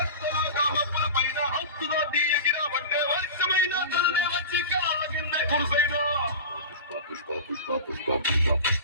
మబ్బుల పైన హక్కులో తీయగిరా పట్టే వర్షమైన తల్లి వచ్చి కాళ్ళ కింద కురిసైనా. పుష్ప పుష్ప పుష్ప పుష్ప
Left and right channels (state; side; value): inverted; both; correlation -0.31